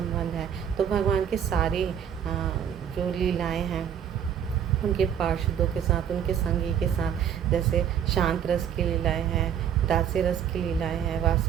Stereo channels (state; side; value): quieter; left; 8.8 dB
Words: है। तो भगवान के सारी जो लीलाएं हैं उनके पार्षदों के साथ, उनके संगी के साथ, जैसे शांत रस की लीलाएं हैं, दास्य रस की लीलाएं हैं,